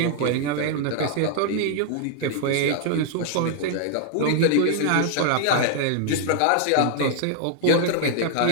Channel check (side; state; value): both; different; correlation 0.00